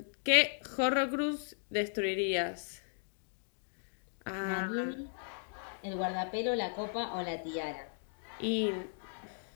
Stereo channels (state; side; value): silent; right; digital silence